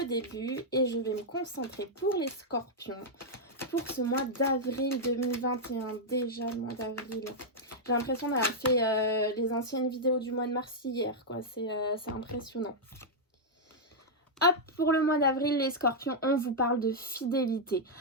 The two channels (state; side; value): normal; both; correlation -0.05